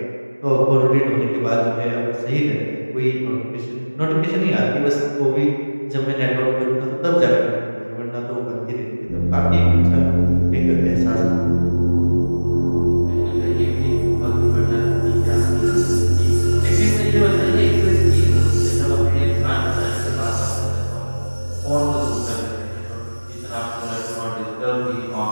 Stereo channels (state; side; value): inverted; both; correlation -1.00